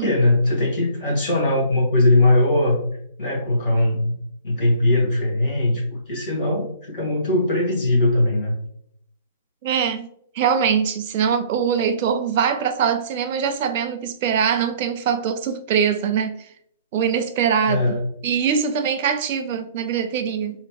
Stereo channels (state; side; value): inverted; both; correlation -0.55